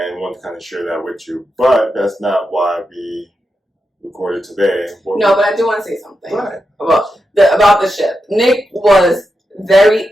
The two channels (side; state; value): both; normal; correlation 0.87